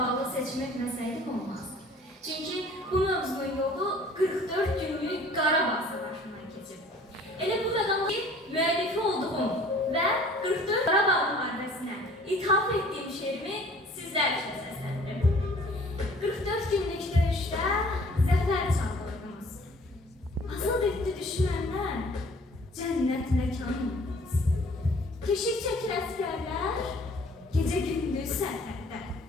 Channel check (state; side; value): normal; both; correlation 0.52